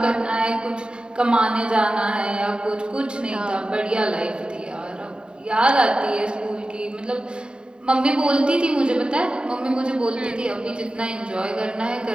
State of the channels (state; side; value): late; left; 0.049 ms